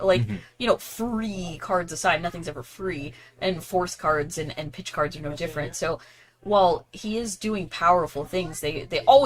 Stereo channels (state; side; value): identical; both; correlation 1.00